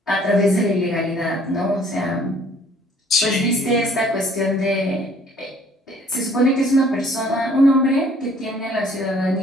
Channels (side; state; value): both; normal; correlation 0.58